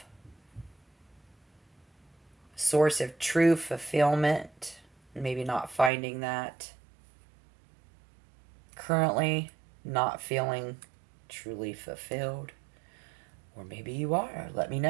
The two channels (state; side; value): drops out; left; at 5.9 s